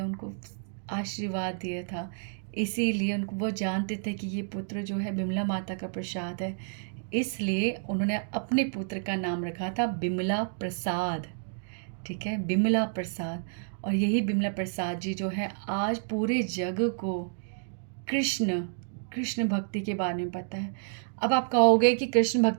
आशीर्वाद दिया था, इसीलिए उनको वो जानते थे कि ये पुत्र जो है बिमला माता का प्रसाद है, इसलिए उन्होंने अपने पुत्र का नाम रखा था बिमला प्रसाद, ठीक है, बिमला प्रसाद। और यही बिमला प्रसाद जी जो है आज पूरे जग को कृष्ण भक्ति के बारे में पता है। अब आप कहोगे कि कृष्ण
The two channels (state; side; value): silent; left; digital silence